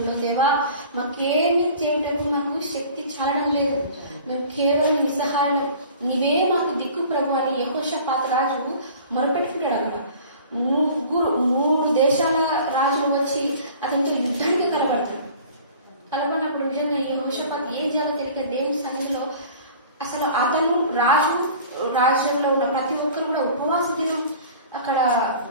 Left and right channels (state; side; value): inverted; both; correlation -0.45